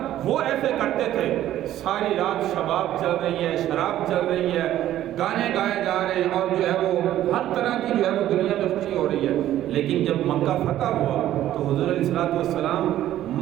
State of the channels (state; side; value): quieter; left; 12.9 dB